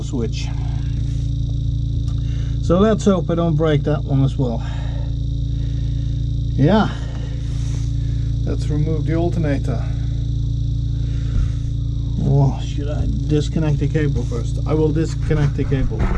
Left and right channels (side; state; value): both; identical; correlation 1.00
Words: switch. So let's hope I don't break that one as well. Yeah, let's remove the alternator. Or should I disconnect the cable first? I will disconnect the cable